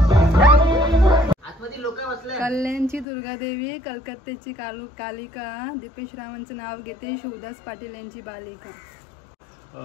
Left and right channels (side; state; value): right; drops out; at 3.1 s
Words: कल्याणची दुर्गादेवी, कलकत्त्याची कालिका, दीपेश रावांचं नाव घेते, शिवदास पाटील यांची बालिका.